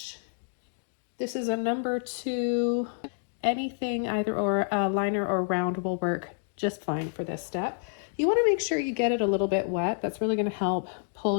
This is a number 2. Anything, either or a liner or round, will work just fine for this step. You want to make sure you get it a little bit wet. That's really going to help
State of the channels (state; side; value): silent; right; digital silence